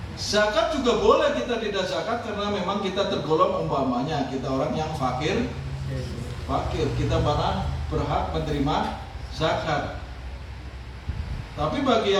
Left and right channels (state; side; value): identical; both; correlation 1.00